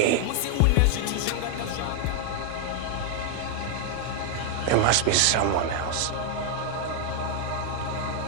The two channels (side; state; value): both; different; correlation 0.00